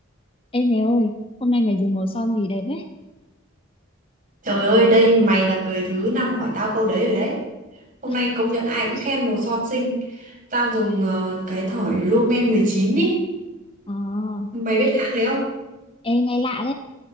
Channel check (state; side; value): normal; both; correlation 0.38